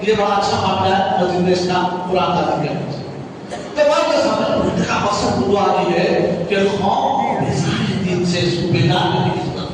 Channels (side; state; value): both; identical; correlation 1.00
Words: یہ بڑا اچھا معاملہ ہے مسجد اسلام قرآن تعلیم کرنا تو بات کا سامنے کا مقصد دعا یہ ہے کہ قوم بظاہر دین سے اس کو بیدار کرنے کی ضرورت